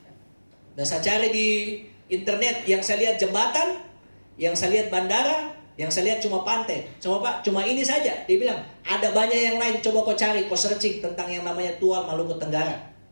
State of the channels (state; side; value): inverted; both; correlation -1.00